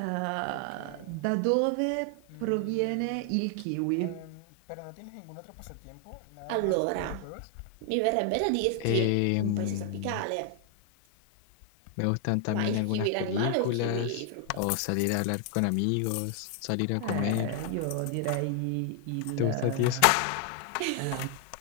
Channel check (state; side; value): different; both; correlation 0.00